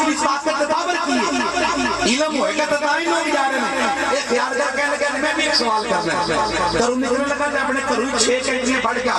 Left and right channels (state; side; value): identical; both; correlation 1.00